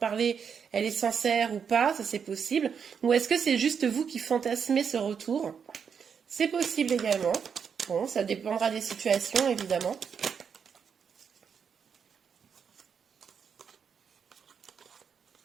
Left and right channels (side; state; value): left; quieter; 6.9 dB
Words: elle est sincère ou pas, ça c'est possible. Ou est-ce que c'est juste vous qui fantasmez ce retour? C'est possible également. Bon, ça dépendra des situations évidemment.